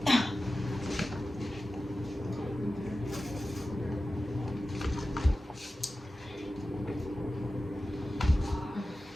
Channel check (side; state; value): both; normal; correlation 0.94